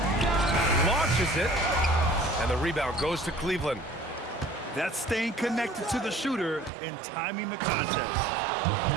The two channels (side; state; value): left; drops out; at 6.7 s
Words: launches it, and the rebound goes to Cleveland. That's staying connected to the shooter and timing the contest.